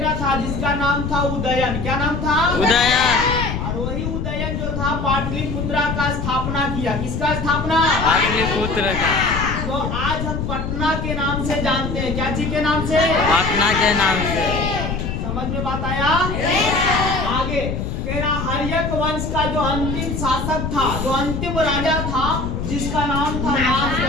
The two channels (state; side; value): noise; left; rumble, 3 dB below the sound